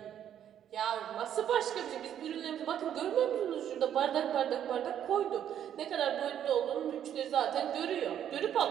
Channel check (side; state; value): left; quieter; 9.9 dB